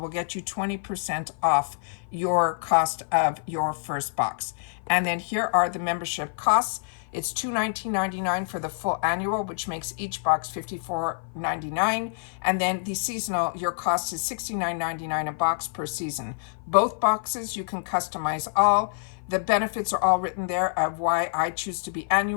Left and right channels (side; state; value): right; silent; 55 dB below the other